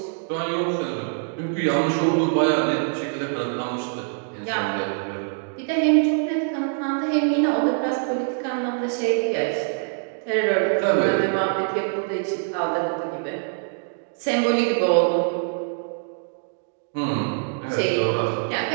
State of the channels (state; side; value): silent; left; digital silence